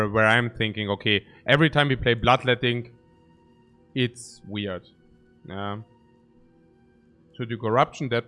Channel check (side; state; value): both; identical; correlation 1.00